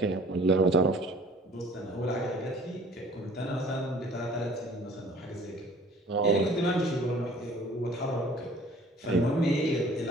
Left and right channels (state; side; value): normal; both; correlation 0.51